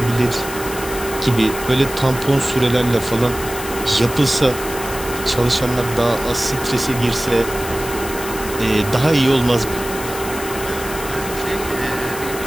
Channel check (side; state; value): left; noise; hiss, 10 dB below the sound